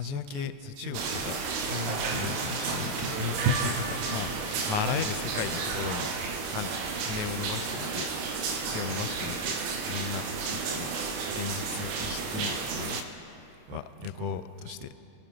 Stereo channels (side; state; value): left; late; 28 ms